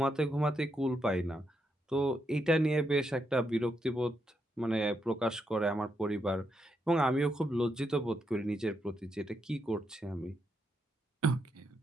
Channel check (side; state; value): both; normal; correlation 0.81